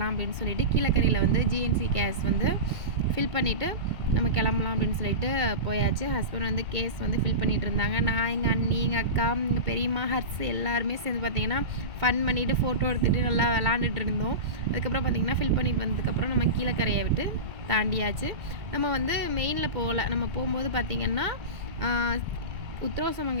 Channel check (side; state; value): left; late; 2.2 ms